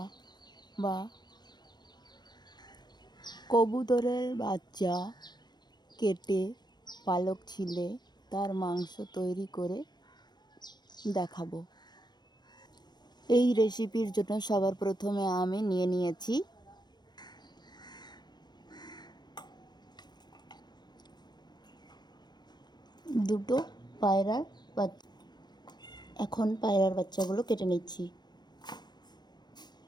বা কবুতরের বাচ্চা কেটে পালক ছিলে তার মাংস তৈরি করে দেখাবো। এই রেসিপির জন্য সবার প্রথমে আমি নিয়ে নিয়েছি দুটো পায়রার বাচ্চা। এখন পায়রার বাচ্চাগুলো কেটে নিচ্ছি।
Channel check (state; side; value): late; right; 0.21 ms